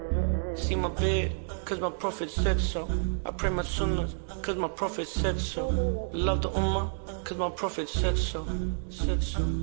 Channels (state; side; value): silent; left; digital silence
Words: See my bed, cause my prophet said so. I pray my sunnahs, cause my prophet said so. Love the ummah, cause my prophet said so. Said